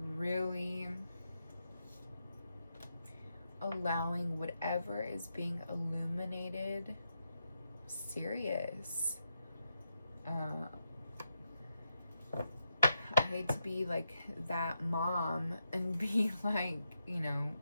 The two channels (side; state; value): both; inverted; correlation -0.84